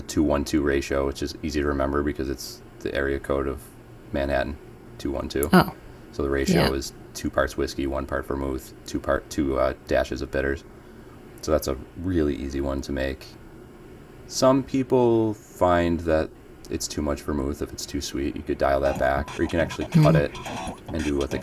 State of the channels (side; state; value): both; identical; correlation 1.00